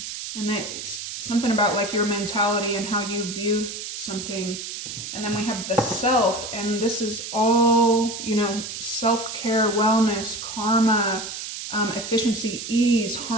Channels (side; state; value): right; noise; hiss, 8 dB below the sound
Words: And it's something about like your mentality and how you view something. And then we have the self, and this is all, you know, self-care, wellness, karma, efficiency, ease,